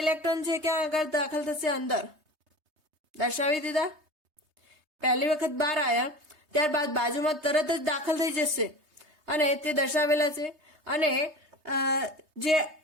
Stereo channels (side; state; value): left; late; 3.2 ms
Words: ઇલેક્ટ્રોન છે ક્યાં આગળ દાખલ થશે, અંદર દર્શાવી દીધા. પહેલી વખત બહાર આવ્યા, ત્યારબાદ બાજુમાં તરત જ દાખલ થઈ જશે અને તે દર્શાવેલા છે. અને જે